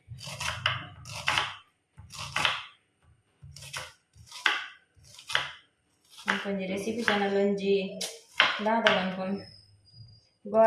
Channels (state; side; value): identical; both; correlation 1.00